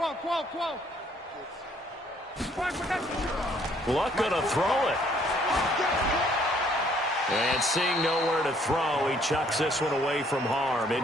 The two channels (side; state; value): both; normal; correlation 0.64